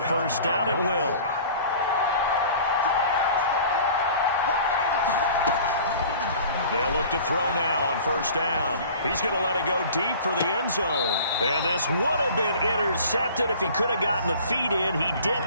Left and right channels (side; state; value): both; inverted; correlation -0.45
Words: 1st down. It will. They'll look to throw now on first down. He's going to let it go deep for the end zone. And this would have been intercepted if he could have gotten the feet in. He